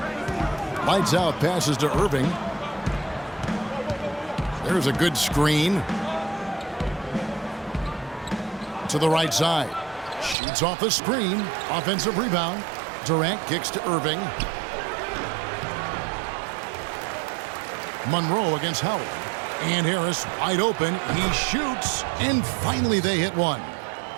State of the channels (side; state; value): left; drops out; at 10.4 s